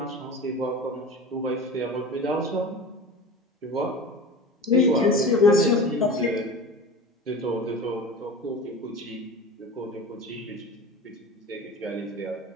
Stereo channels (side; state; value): both; normal; correlation 0.33